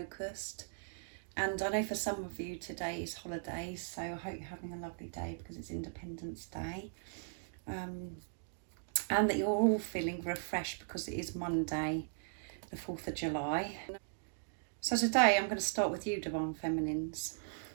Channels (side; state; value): left; silent; digital silence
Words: And I know for some of you today is holidays, so I hope you're having a lovely day because it's Independence Day. And that you're all feeling refreshed because it is Monday, the 4th of July. So today I'm going to start with you, Divine Feminines.